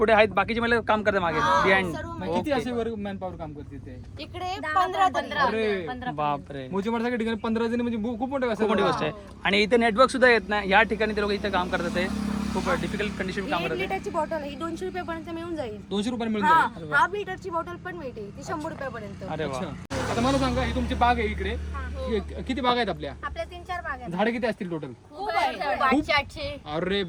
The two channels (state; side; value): identical; both; correlation 1.00